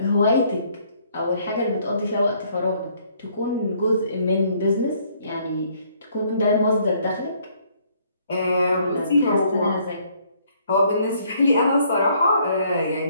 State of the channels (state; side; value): inverted; both; correlation -0.65